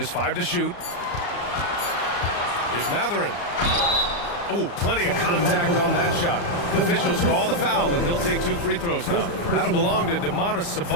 5 to shoot. Here's Matherin. Oh, plenty of contact on that shot. The officials call the foul, and he'll take 2 free throws now. That'll belong to Demonis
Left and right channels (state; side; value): late; right; 34 ms